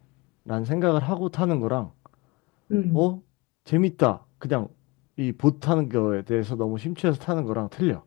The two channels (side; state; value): right; quieter; 24.9 dB